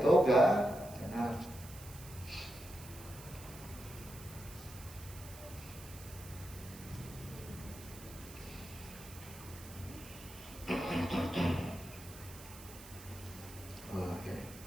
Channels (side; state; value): right; noise; hiss, 16 dB below the sound